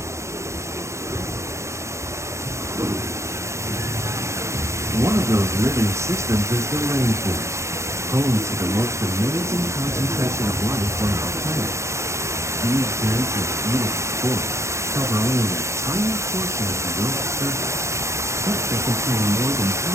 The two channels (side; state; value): left; late; 0.14 ms